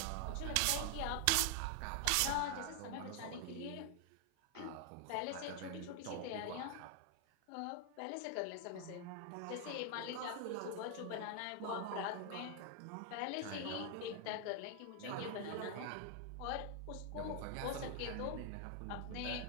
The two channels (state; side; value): different; both; correlation 0.00